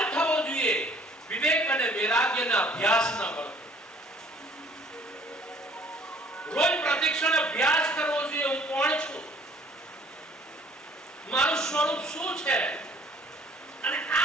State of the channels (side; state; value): both; normal; correlation 0.56